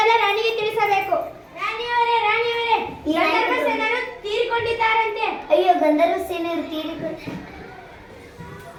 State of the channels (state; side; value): identical; both; correlation 1.00